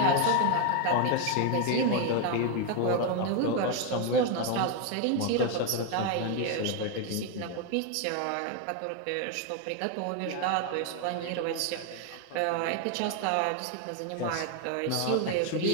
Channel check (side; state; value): both; different; correlation 0.01